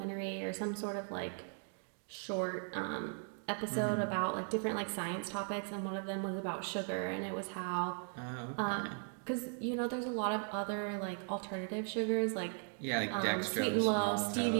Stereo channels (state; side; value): silent; left; 53 dB below the other